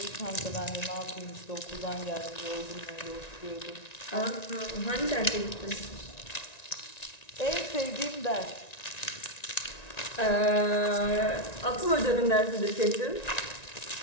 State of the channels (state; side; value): late; right; 1.9 ms